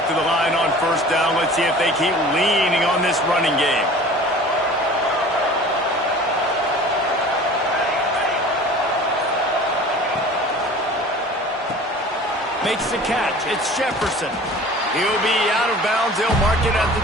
to the line on first down. Let's see if they keep leaning on this running game. Makes the catch. It's Jefferson. He'll be out of bounds. They'll mark it at the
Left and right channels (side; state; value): both; normal; correlation 0.43